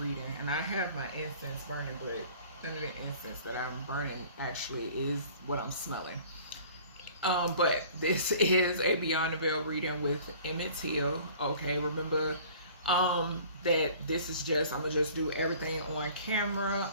And I have my incense burning, but none of the incense that I'm burning actually is what I'm smelling. But this is a Beyond the Veil reading with Emmett. Okay, remember that this is just, I'm gonna just do everything on camera.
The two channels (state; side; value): inverted; both; correlation -0.49